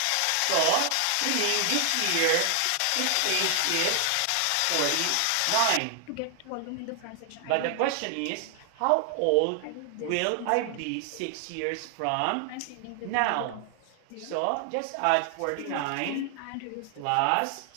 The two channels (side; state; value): both; different; correlation 0.00